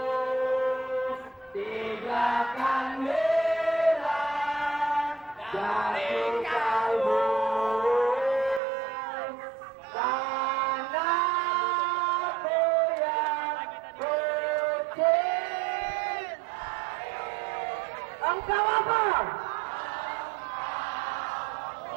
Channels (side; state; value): left; drops out; at 8.6 s